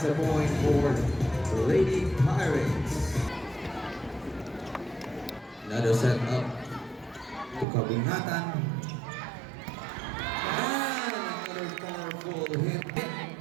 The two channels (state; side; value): drops out; left; at 7.7 s